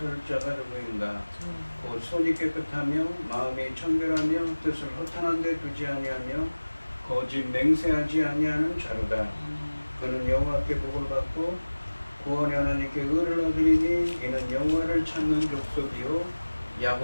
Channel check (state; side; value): inverted; both; correlation -1.00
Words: 자가 누구인가. 곧 손이 깨끗하며 마음이 청결하며 뜻을 허탄한 데 두지 아니하며 거짓 맹세하지 아니하는 자로다. 그는 여호와께 복을 받고 구원의 하나님께 의를 얻으리니 이는 여호와를 찾는 족속이요